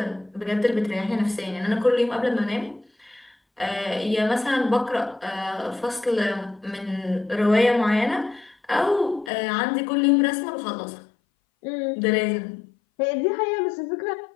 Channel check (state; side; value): drops out; right; at 9.3 s